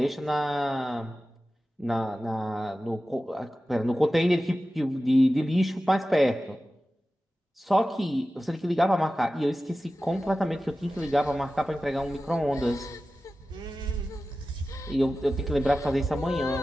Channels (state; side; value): normal; both; correlation 0.94